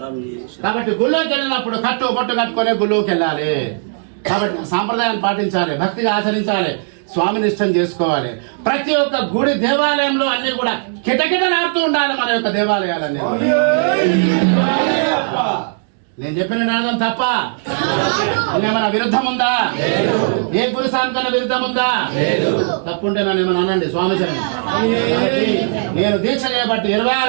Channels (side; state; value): left; silent; digital silence